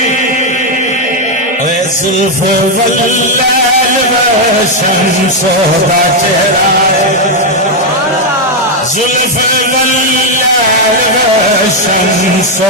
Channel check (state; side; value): normal; both; correlation 0.02